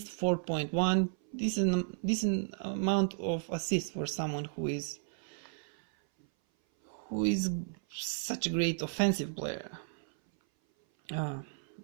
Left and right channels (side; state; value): left; silent; 55 dB below the other